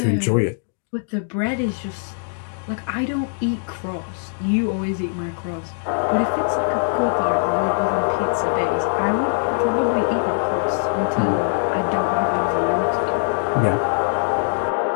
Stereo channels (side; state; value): right; silent; digital silence